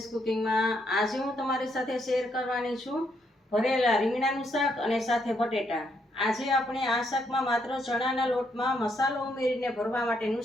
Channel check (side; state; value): both; normal; correlation 0.75